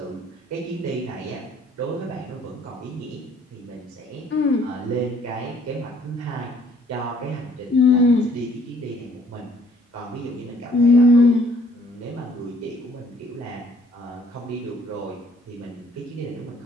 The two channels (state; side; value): normal; both; correlation 0.61